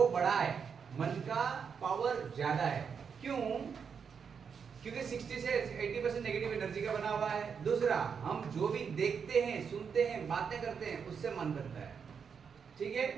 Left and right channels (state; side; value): quieter; left; 6.5 dB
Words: बड़ा है, मन का पावर ज्यादा है। क्यों? क्योंकि 60 से 80% नेगेटिव एनर्जी का बना हुआ है। दूसरा, हम जो भी देखते हैं, सुनते हैं, बातें करते हैं, उससे मन बनता है। ठीक है?